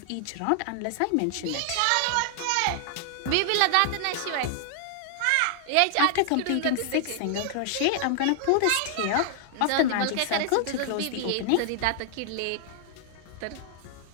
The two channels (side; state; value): both; different; correlation 0.00